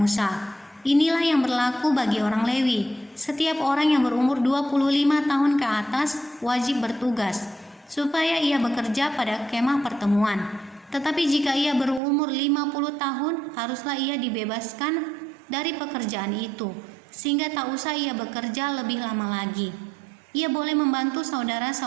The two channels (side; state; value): left; drops out; at 12.0 s